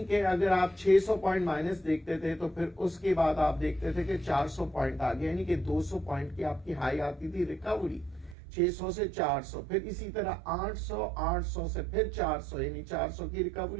کہ اگر آپ 600 پوائنٹ مائنس دیکھتے تھے تو پھر اس کے بعد آپ دیکھتے تھے کہ 400 پوائنٹ آ گیا، یعنی کہ 200 پوائنٹ کی آپ کی ہائی آتی تھی ریکوری 600 سے 400. پھر اسی طرح 800 سے پھر 400 یعنی 400 کی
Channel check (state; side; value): drops out; left; at 8.3 s